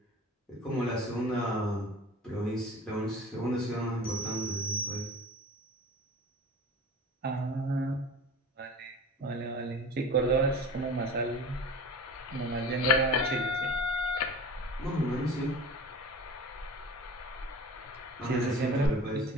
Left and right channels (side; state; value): both; normal; correlation 0.38